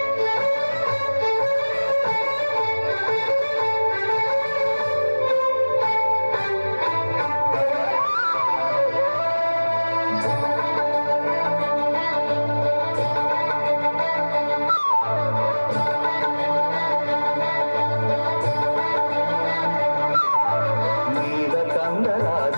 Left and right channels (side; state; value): both; inverted; correlation -1.00